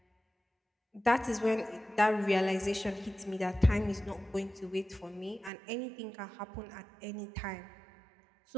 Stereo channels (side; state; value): left; drops out; at 5.5 s